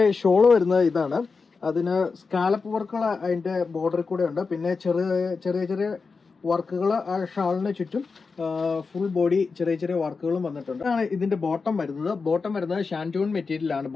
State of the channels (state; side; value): quieter; right; 4.6 dB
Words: ഷോള് വരുന്നത് ഇതാണ്. അതിന് സ്കാലപ്പ് വർക്കുകൾ അതിന്റെ ബോർഡറിൽ കൂടെ ഉണ്ട്. പിന്നെ ചെറിയ ചെറിയ വർക്കുകൾ ആ ഷാളിന് ചുറ്റും ഫുൾ ബോഡി ചെറിയ ചെറിയ വർക്കുകളും വന്നിട്ടുണ്ട്. ആണ് ഇതിന്റെ ബോട്ടം വരുന്നത് ഷാൻറ്റൂൺ മെറ്റീരിയലാണ്